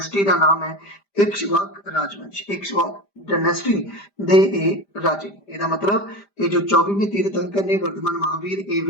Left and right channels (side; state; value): right; late; 5.0 ms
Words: का नाम है इक्ष्वाक राजवंश। इक्ष्वाक डायनेस्टी दे राजे। ਇਹਦਾ मतलब ये जो 24वें तीर्थंकर ने वर्धमान महावीर, ये